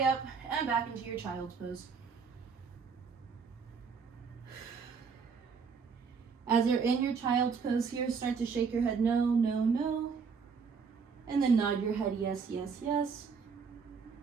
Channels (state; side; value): quieter; left; 5.7 dB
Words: up and back into your child's pose. As you're in your child's pose here, start to shake your head no, no, no. And then nod your head yes, yes, yes.